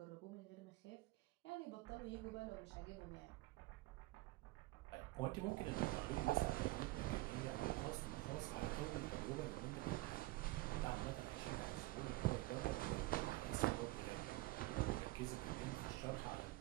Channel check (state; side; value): quieter; left; 19.7 dB